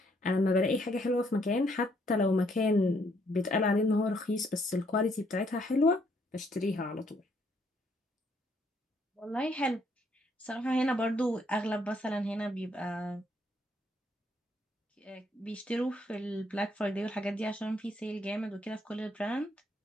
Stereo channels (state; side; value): normal; both; correlation 0.70